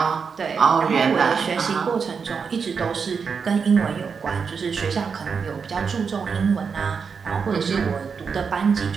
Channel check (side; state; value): left; quieter; 5.8 dB